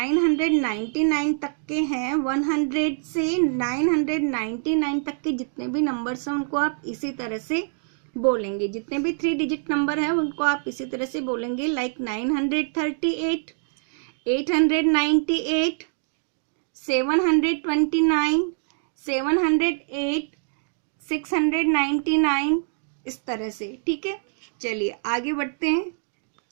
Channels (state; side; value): silent; left; digital silence